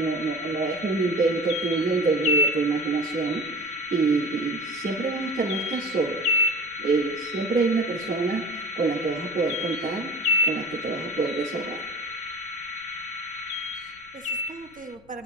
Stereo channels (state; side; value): noise; left; rumble, 29 dB below the sound